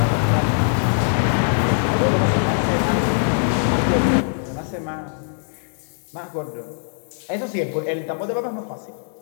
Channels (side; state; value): right; silent; 64 dB below the other